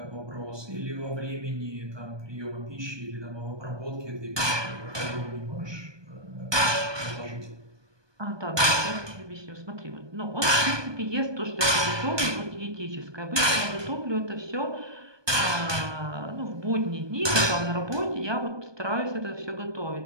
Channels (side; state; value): left; late; 1.2 ms